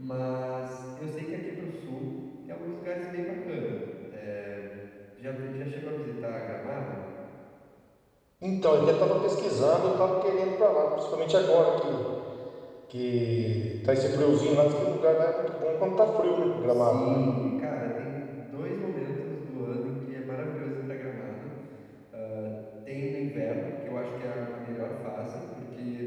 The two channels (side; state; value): both; identical; correlation 1.00